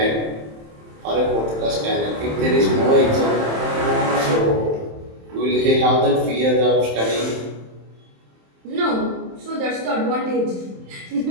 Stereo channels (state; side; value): late; left; 27 ms